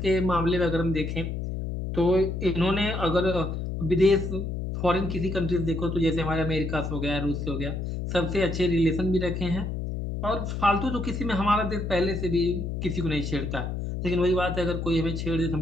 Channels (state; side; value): noise; left; hum, 4 dB below the sound